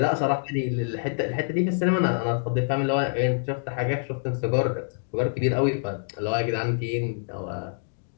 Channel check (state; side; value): silent; right; digital silence